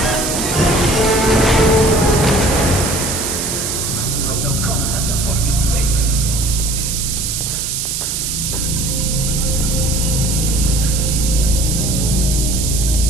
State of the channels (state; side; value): noise; right; hiss, 2 dB below the sound